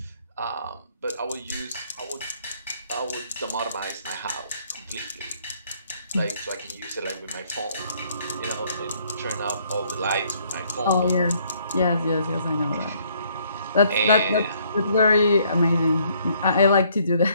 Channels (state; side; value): inverted; both; correlation -0.66